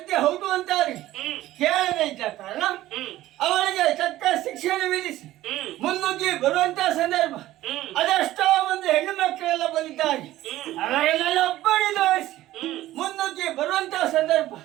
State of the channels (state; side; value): quieter; left; 15.2 dB